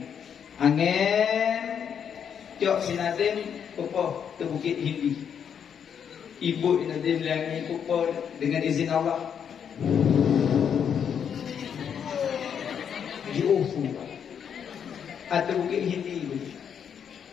angin Cok Sinadim Pupoh ke Bukit Hindi. Ibu Nadim Langi Pupoh dengan izin Allah di Ufu atau Bukit Hindi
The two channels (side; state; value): right; quieter; 7.9 dB